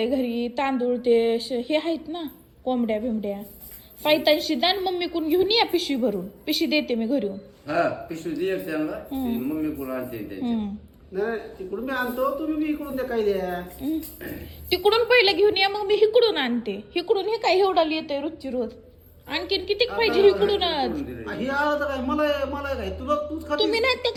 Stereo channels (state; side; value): identical; both; correlation 1.00